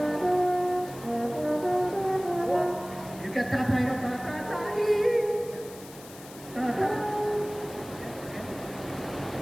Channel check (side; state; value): left; noise; hiss, 18 dB below the sound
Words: You can tatay na tatatay. Tata.